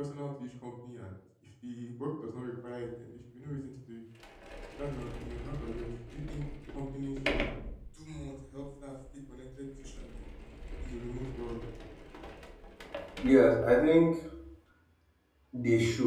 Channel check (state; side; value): identical; both; correlation 1.00